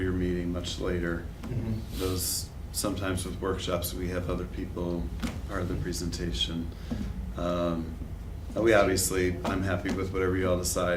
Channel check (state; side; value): identical; both; correlation 1.00